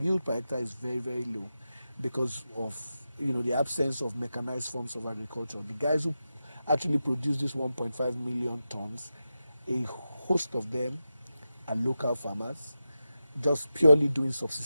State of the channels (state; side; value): inverted; both; correlation -0.91